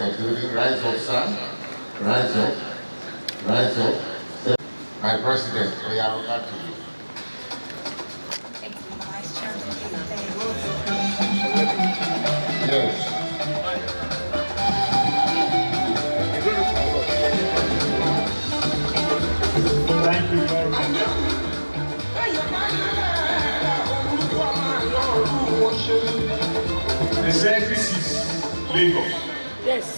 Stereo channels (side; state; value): both; inverted; correlation -1.00